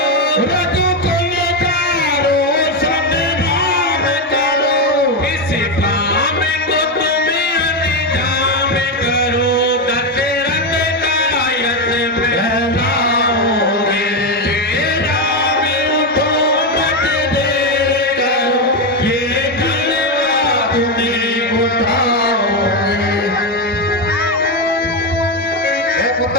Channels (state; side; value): normal; both; correlation 0.09